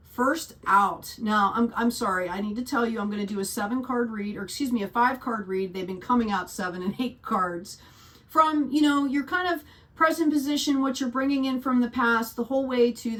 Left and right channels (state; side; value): identical; both; correlation 1.00